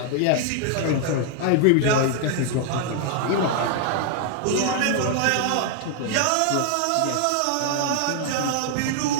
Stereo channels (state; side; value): different; both; correlation 0.00